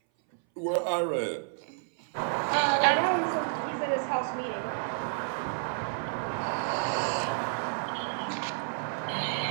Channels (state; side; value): silent; left; 58 dB below the other